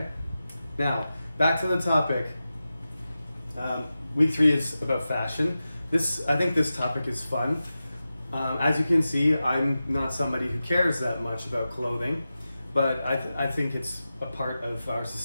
Now, back to the topic. Week 3 is about fashion. I think this topic is fun. As you can see, I'm not somebody who cares that much about clothing, but I think it's a part of our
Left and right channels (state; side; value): inverted; both; correlation -0.93